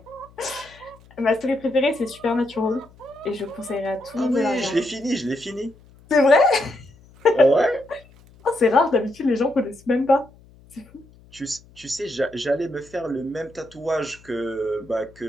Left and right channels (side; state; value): left; noise; hum, 26 dB below the sound